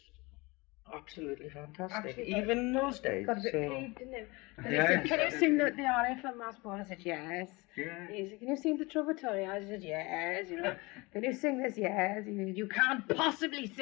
absolutely fantastic, Actually, even in those days. Got a bit So, peeved, didn't it? And Yeah, he said, can you exactly. sing the aria from Masport? I said, yes. yeah. He said, can you sing the Trovatore? I said, yes. You know, can you sing this? Yes. He said, you can't possibly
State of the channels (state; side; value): quieter; right; 24.5 dB